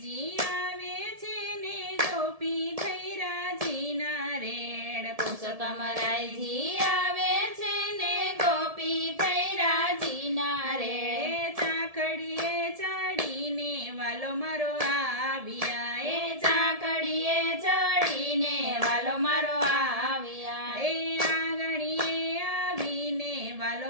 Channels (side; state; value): left; late; 1.7 ms